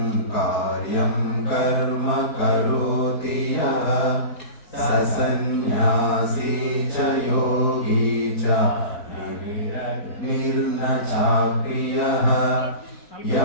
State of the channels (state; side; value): late; right; 4.6 ms